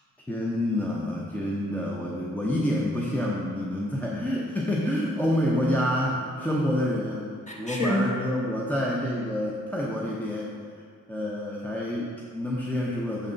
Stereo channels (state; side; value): normal; both; correlation 0.69